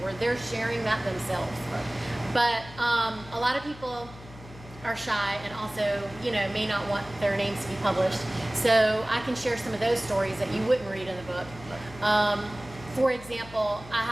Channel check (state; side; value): noise; left; hum, 17 dB below the sound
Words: where they're sharing that themselves. Right. But a lot of people are shy and also, may not want their names to be published. So I can share some of those stories that you wouldn't read in the book. Right. For example, I